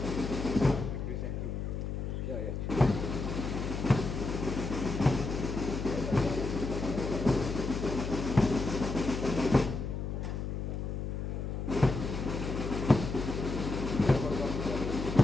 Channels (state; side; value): noise; left; hum, 3 dB below the sound